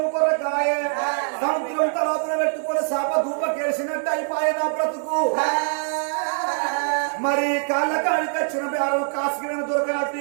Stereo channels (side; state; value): left; silent; digital silence